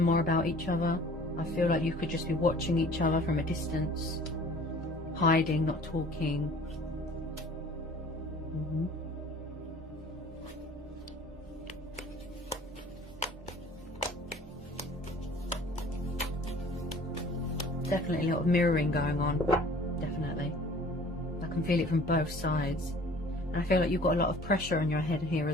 more about each other. I feel like you could just be watching each other from a distance, hiding, not talking. Definitely a lot of mirroring going on. Definitely. I can feel it from both sides. And I feel like you've got a lot of pressure on your head here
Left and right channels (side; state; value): both; normal; correlation 0.49